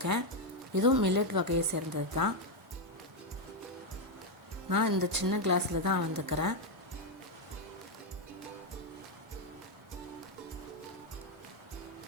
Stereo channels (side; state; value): both; normal; correlation 0.03